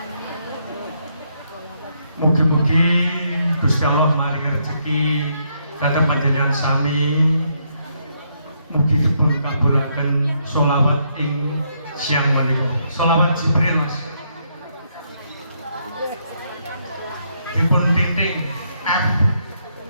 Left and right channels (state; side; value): inverted; both; correlation -0.75